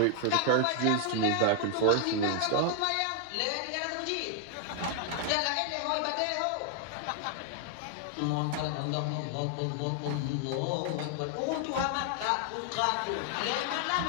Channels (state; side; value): different; both; correlation 0.00